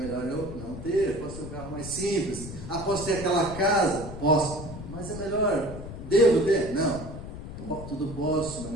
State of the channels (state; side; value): noise; left; rumble, 10 dB below the sound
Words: eu não ter, posso ter um carro mais simples. Posso ter aquela casa? Posso. Mas é melhor, devo ter? Não. Tudo posso, mas